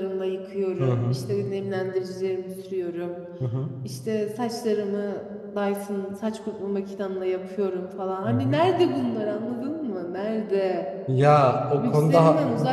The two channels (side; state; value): both; identical; correlation 1.00